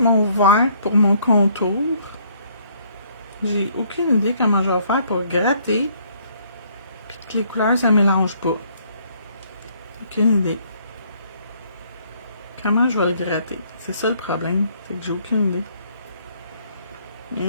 mon vert pour mon contour. J'ai aucune idée comment je vais faire pour gratter. Puis que les couleurs, ça ne mélange pas. Aucune idée. Comment je vais le gratter? C'est ça le problème. C'est que j'ai aucune idée.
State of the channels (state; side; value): inverted; both; correlation -0.64